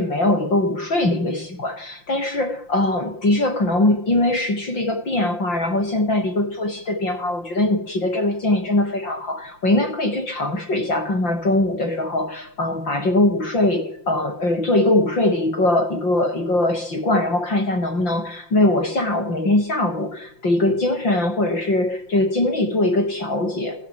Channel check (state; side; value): late; right; 5.8 ms